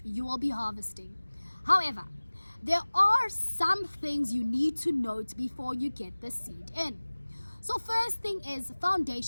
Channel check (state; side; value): inverted; both; correlation -1.00